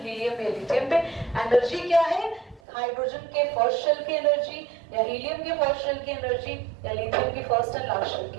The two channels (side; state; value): left; drops out; at 2.6 s